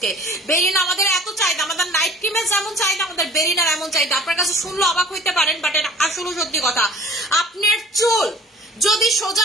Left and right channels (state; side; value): normal; both; correlation 0.49